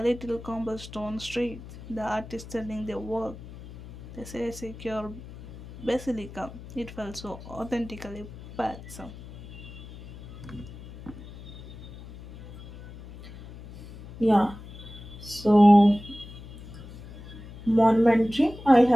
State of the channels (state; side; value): noise; left; hum, 15 dB below the sound